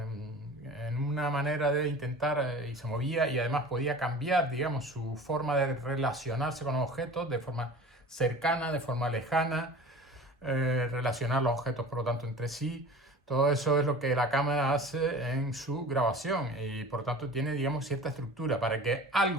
en una manera de intentar y se movía y además podía cambiar, digamos, su forma de relacionarse con los objetos de forma cercana, de forma lejana, relacionar los objetos por lo tanto entre sí. Todo eso es lo que la cámara hace en su grabación y por tanto tiene, digamos, cierta estructura. Para que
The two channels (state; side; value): normal; both; correlation 0.39